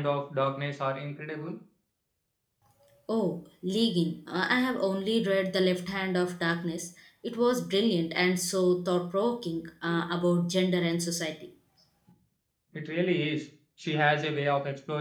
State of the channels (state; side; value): identical; both; correlation 1.00